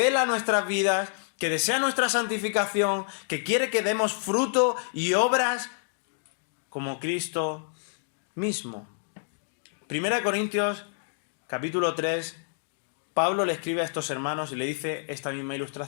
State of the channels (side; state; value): right; silent; digital silence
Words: nuestras vidas, que desea nuestra santificación, que quiere que demos fruto y obras como Cristo mismo. 1 Corintios, capítulo 3, Pablo le escribe a estos hermanos y le dice esta misma